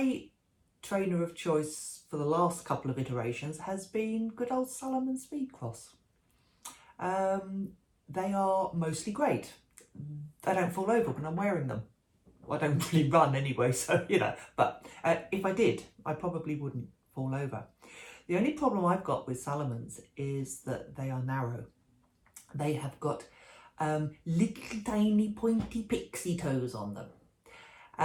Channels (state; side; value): identical; both; correlation 1.00